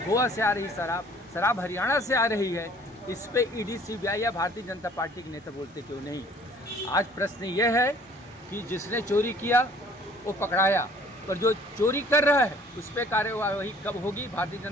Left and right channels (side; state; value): both; normal; correlation 0.54